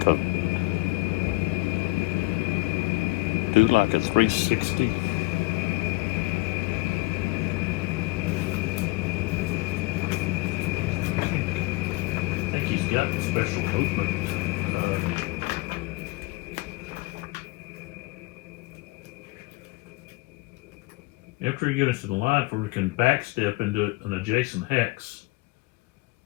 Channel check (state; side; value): quieter; right; 22.3 dB